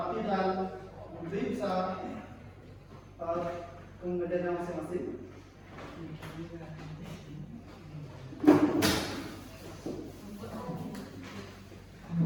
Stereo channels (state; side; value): identical; both; correlation 1.00